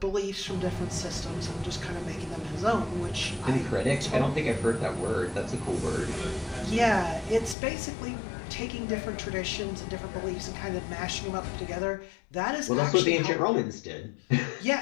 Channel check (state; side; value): drops out; right; at 7.6 s